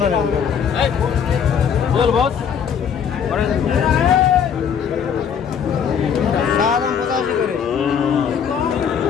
বল বস সাদাম 85 করে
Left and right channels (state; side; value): quieter; right; 7.5 dB